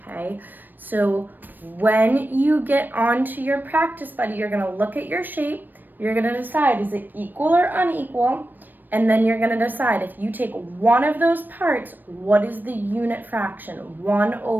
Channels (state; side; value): late; left; 0.091 ms